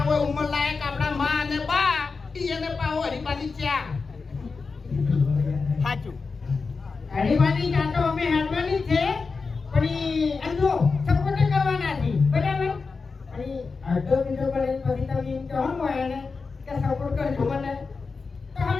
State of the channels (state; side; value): quieter; right; 4.6 dB